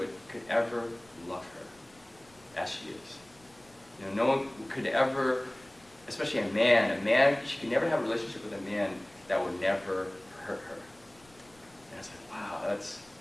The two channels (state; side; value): noise; left; rumble, 29 dB below the sound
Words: could ever love her as she is. You know, no one could ever, especially a man, she could never have a relationship with a man that would never